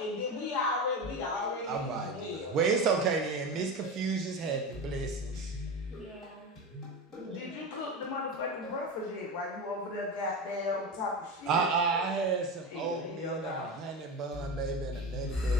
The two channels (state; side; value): normal; both; correlation 0.22